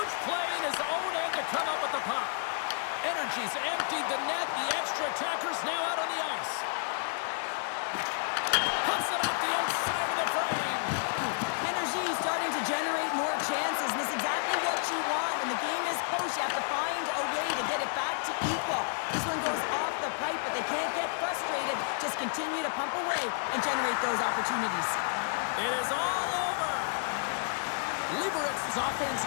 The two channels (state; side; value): silent; right; digital silence